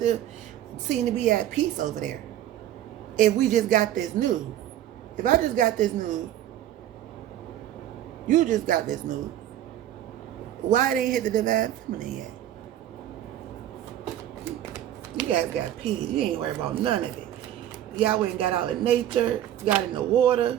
seem to be at peace over there? If we just got this news. If I just got this news, you just got this news, why they ain't hit the Divine Feminine yet? You guys got peace. You ain't worried about none of it. Y'all went and got out in nature, got in the water.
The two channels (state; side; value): quieter; left; 12.0 dB